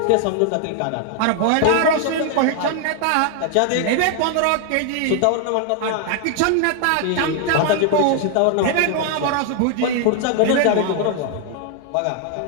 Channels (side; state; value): both; different; correlation 0.00